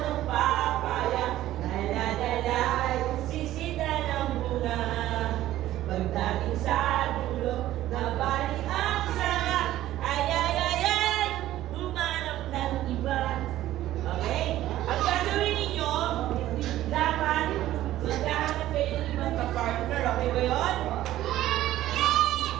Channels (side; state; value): left; quieter; 14.2 dB